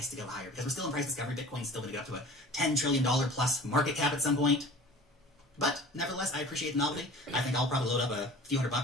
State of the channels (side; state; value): both; normal; correlation 0.42